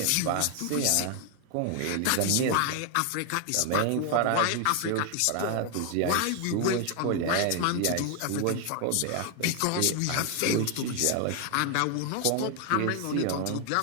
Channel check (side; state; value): both; different; correlation 0.00